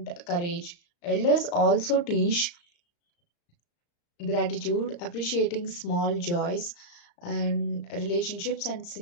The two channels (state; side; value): late; right; 34 ms